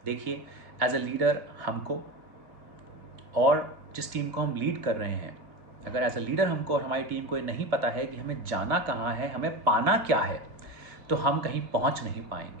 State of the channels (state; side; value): late; left; 2.1 ms